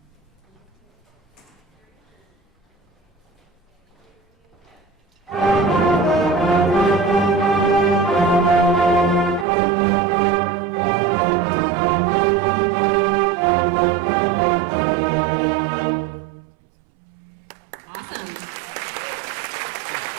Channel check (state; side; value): drops out; left; at 9.5 s